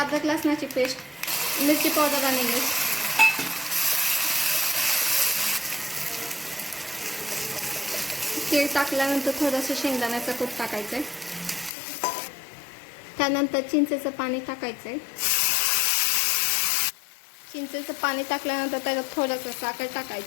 लसणाची पेस्ट, मिरची पावडर आणि मीठ, तीळ टाकल्यानंतर थोडंसं शेंगदाण्याचं कूट टाकायचं। त्यानंतर चिंचेचं पाणी टाकायचं। चिंचेचं पाणी टाकल्यानंतर त्याच्यात थोडंसं साखर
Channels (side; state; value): right; drops out; at 11.7 s